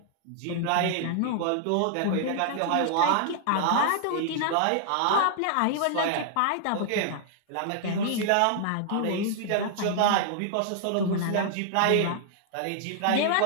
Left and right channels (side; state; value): both; different; correlation -0.01